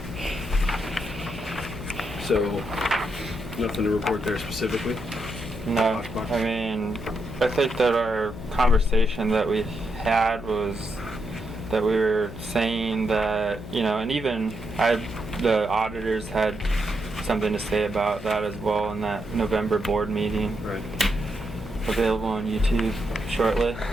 So nothing to report there specifically? no, I mean, I think that our conversation that we had was that we were saying that, and even the auditors had something to say about that as well in that November board meeting, Right. available on YouTube shortly.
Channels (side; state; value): left; noise; hum, 12 dB below the sound